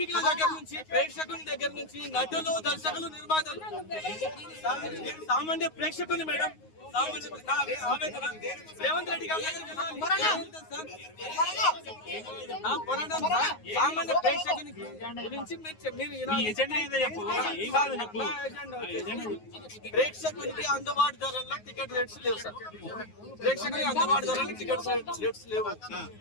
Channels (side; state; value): right; late; 9.5 ms